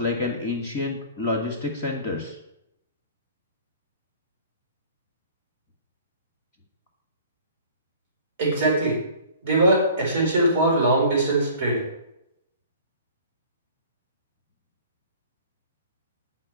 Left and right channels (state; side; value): inverted; both; correlation -0.48